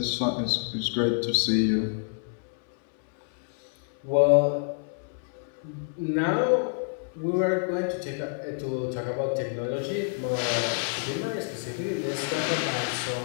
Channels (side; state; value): right; silent; 60 dB below the other